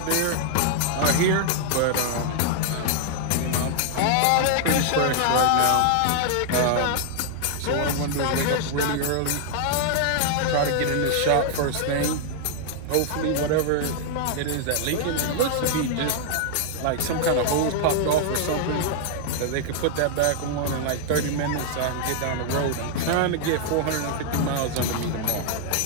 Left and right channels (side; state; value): both; different; correlation -0.01